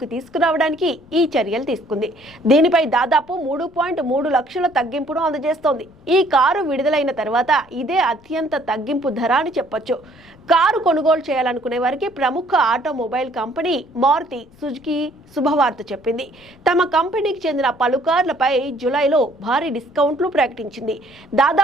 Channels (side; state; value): left; noise; rumble, 27 dB below the sound